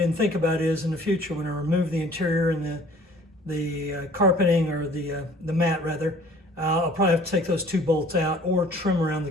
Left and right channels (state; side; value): normal; both; correlation 0.52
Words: think about is in the future when I remove the interior and the carpeting, or the mat rather, I'll probably have to take those 2 bolts out or trim around the